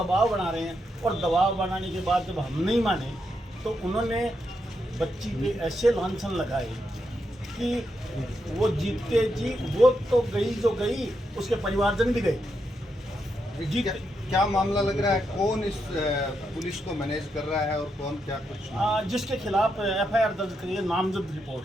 बना रहे हैं। और दबाव बनाने के बाद जब हम नहीं माने तो उन्होंने बच्ची पे ऐसे लांछन लगाए कि वो जीतते जी, वो तो गई जो गई, उसके परिवारजन भी गए। जी क्या मामला लग रहा है? कौन इस पुलिस को मैनेज कर रहा है और कौन क्या कुछ? जिसके खिलाफ FIR दर्ज करिए, नामजद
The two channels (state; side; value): normal; both; correlation 0.82